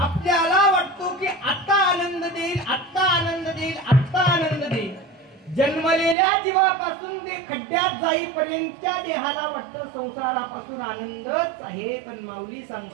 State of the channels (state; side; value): drops out; left; at 6.2 s